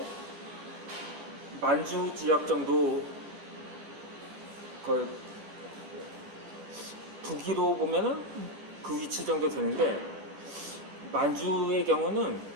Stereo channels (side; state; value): left; late; 14 ms